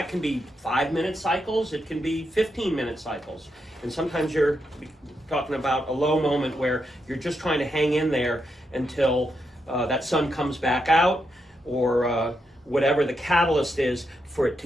can be 5-minute cycles, it can be 15-minute cycles, and sometimes you're talking about a low moment where you're just trying to hang in there until that sun comes back out, or whatever the catalyst is for it to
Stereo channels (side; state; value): both; normal; correlation 0.83